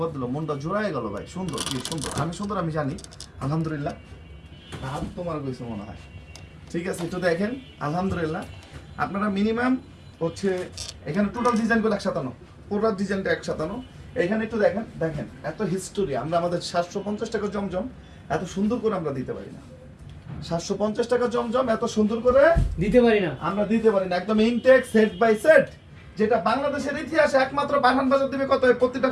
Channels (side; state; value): both; identical; correlation 1.00